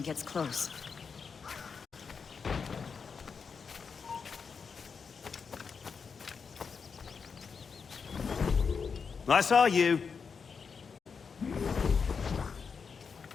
gets close. I saw you.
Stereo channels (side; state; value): right; quieter; 5.7 dB